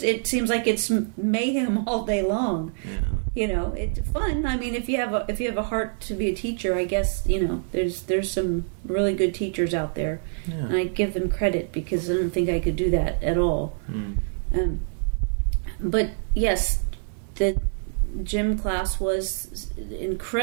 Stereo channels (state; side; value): silent; left; digital silence